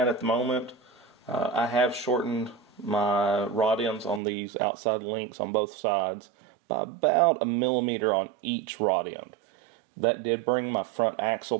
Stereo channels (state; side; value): drops out; left; at 4.2 s